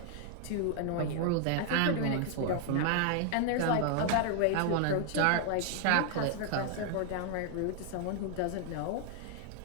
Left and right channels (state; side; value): different; both; correlation 0.00